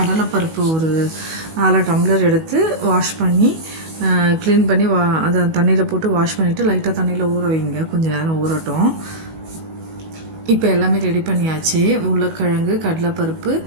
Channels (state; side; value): late; left; 19 ms